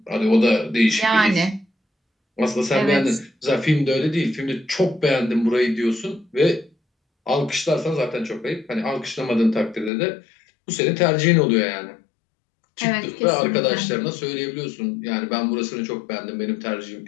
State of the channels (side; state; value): right; drops out; at 9.9 s